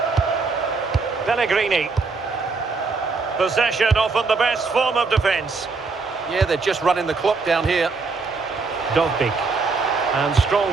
Pellegrini. Possession often the best form of defence. Yeah, they're just running the clock down here. Dogbik. And strong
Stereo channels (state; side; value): quieter; left; 4.3 dB